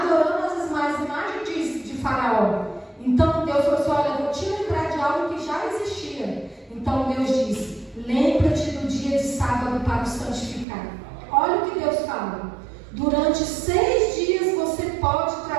as imagens de Faraó. Então Deus falou assim, olha, eu vou te lembrar de algo que já existia. Então Deus disse, lembra-te do dia de sábado para o santificar. Olha o que Deus fala. Durante 6 dias você pode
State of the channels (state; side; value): drops out; left; at 10.7 s